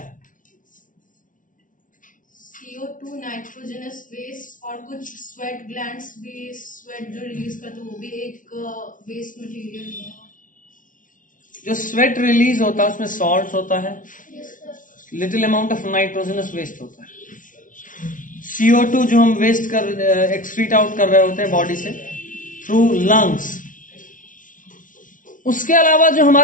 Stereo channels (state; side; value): late; right; 0.38 ms